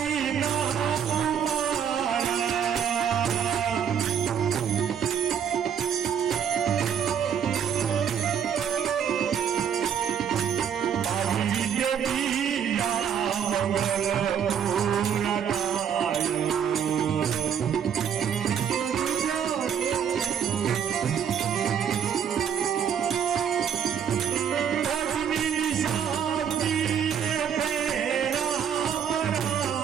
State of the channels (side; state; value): left; quieter; 8.2 dB